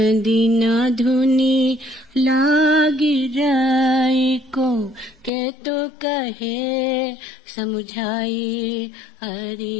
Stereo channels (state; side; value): drops out; right; at 5.3 s